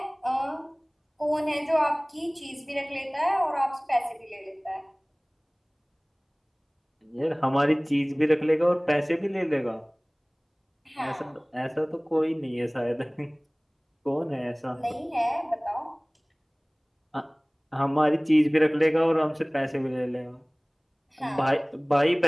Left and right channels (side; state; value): both; identical; correlation 1.00